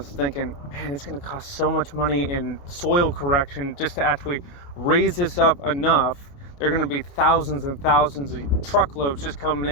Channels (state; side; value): late; right; 29 ms